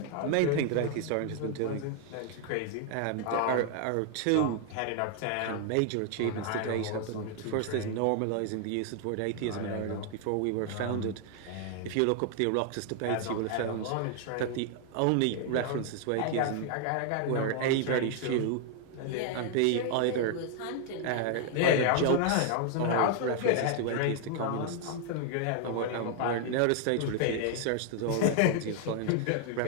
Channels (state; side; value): different; both; correlation 0.00